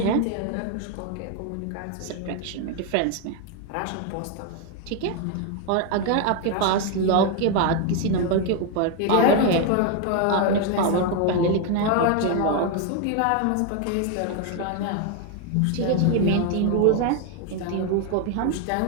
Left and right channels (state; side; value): different; both; correlation 0.01